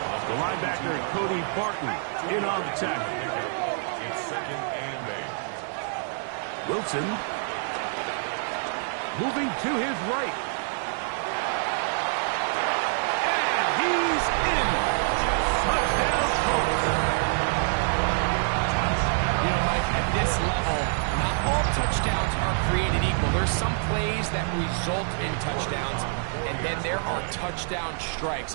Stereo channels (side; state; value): left; silent; digital silence